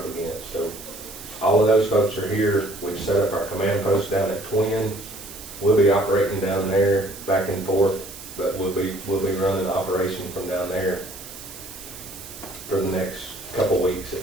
against. So all of those folks are here. We've set up our command post down at Twin. We'll be operating down there back and forth, but we'll be running the operation from down there for the next couple weeks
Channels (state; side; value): noise; right; hiss, 14 dB below the sound